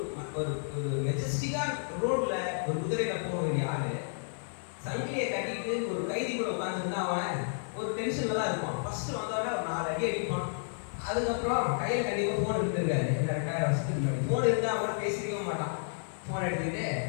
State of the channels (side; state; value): right; silent; 57 dB below the other